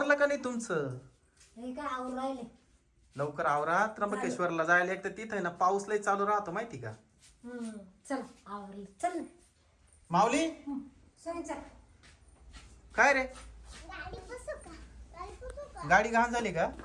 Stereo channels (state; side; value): identical; both; correlation 1.00